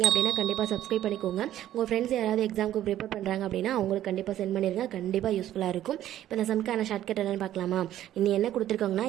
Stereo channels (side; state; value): left; quieter; 12.5 dB